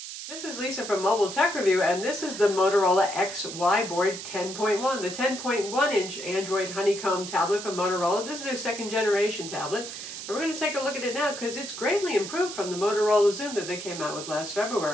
This is Lisa from Mobile Tech Review, and this is the Motorola XYBoard 10.1, the 10.1-inch Android honeycomb tablet from Motorola. This is their second generation tablet, and we're going to take a look at it now because it's greatly improved from the Motorola Zoom that they came out with last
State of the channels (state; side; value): noise; right; hiss, 9 dB below the sound